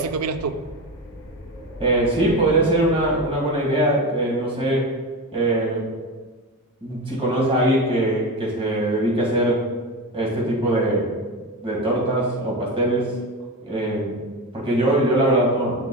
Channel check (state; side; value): normal; both; correlation 0.22